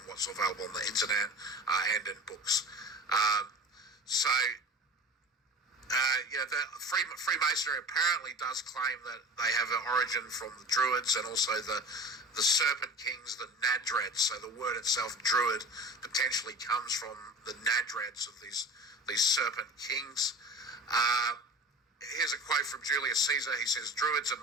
what's available on the internet and in books. The Freemasonry apparently does claim that they have an origin from the Druids and also the Serpent Kings, the Nadreds. So the word itself, Druid, potentially comes from the Nadreds of these Serpent Kings. Here's a quote from Julius Caesar. He says, "Druids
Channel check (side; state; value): both; normal; correlation 0.37